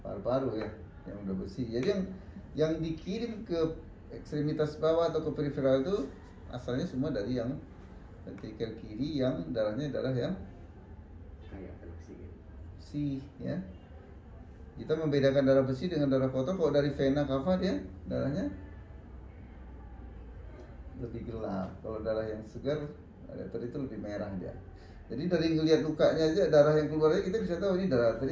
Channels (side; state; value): both; identical; correlation 1.00